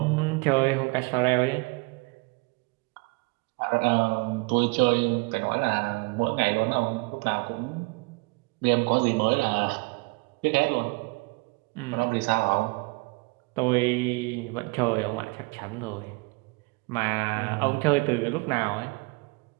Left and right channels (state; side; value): quieter; left; 27.8 dB